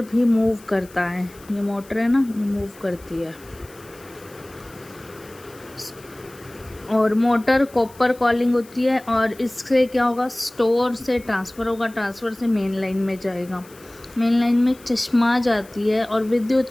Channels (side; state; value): left; noise; hiss, 24 dB below the sound